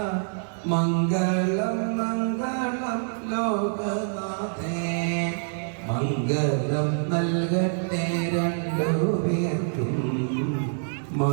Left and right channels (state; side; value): silent; left; digital silence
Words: മംഗളം മംഗളം ലോകനാഥേ മംഗളം നൽകട്ടെ രണ്ടുപേർക്കും